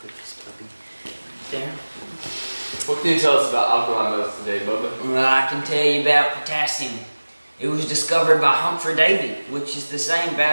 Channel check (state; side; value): inverted; both; correlation -1.00